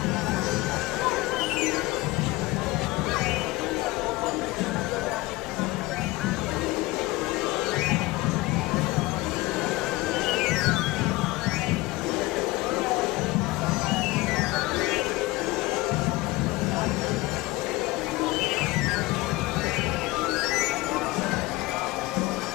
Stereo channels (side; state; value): right; quieter; 20.7 dB